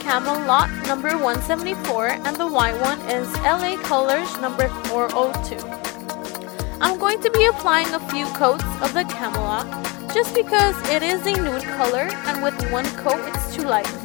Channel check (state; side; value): quieter; right; 27.3 dB